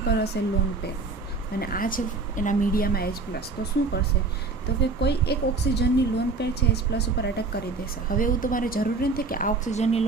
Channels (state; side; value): quieter; left; 4.0 dB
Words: પર હશે લોન પેર અને આ છે એના મીડિયામાં H+. તો શું કરશે? તો કે કોઈ એક ઓક્સિજનની લોન પેર છે H+ ઉપર અટેક કરી દેશે. હવે એવું તમારે જરૂરી નથી કે આ ઓક્સિજનની